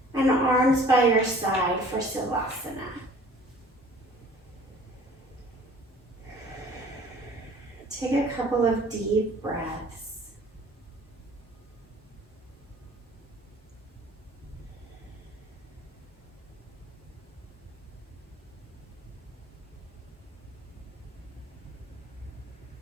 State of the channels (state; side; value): normal; both; correlation 0.50